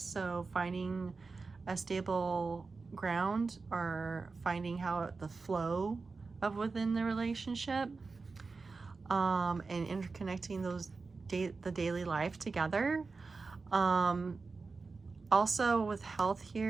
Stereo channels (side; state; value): left; quieter; 4.2 dB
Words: finding a stable ground or finding how the flow of within the relationship, and interconnecting those the daily life together. Also with health